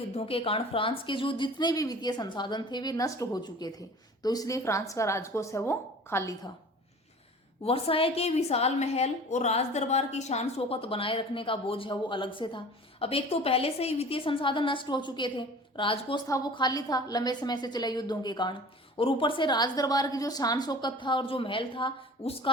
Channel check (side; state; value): both; normal; correlation 0.42